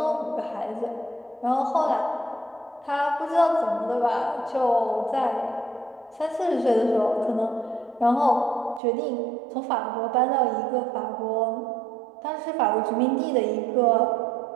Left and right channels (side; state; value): left; drops out; at 8.8 s